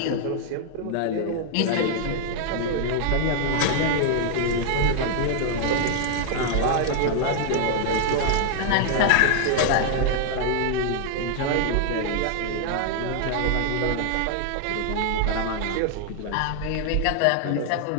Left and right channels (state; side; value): different; both; correlation 0.00